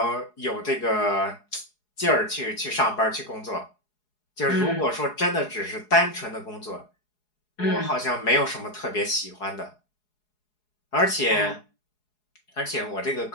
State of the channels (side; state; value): right; late; 4.8 ms